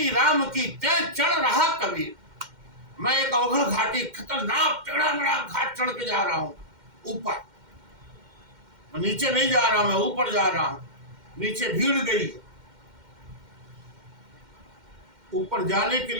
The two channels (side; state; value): left; late; 2.1 ms